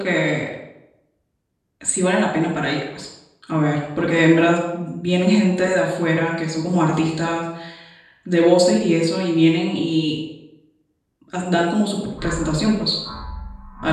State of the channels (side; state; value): both; identical; correlation 1.00